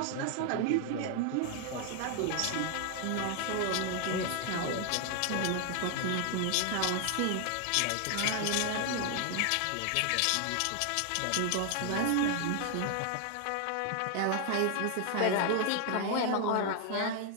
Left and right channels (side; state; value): both; different; correlation 0.00